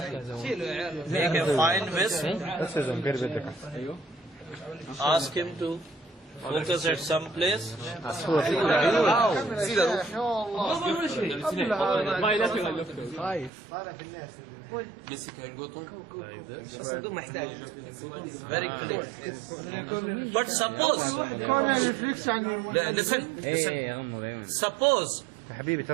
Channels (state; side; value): drops out; left; at 13.5 s